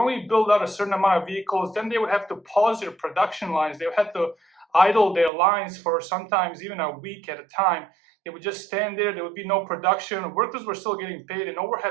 build out a certain amount of vehicles. Then they would have to pause their production lines. They would have to idle their lines for sometimes even a week at a time. They would just stand there. There would be no production. Workers were still getting paid, and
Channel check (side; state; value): left; drops out; at 5.3 s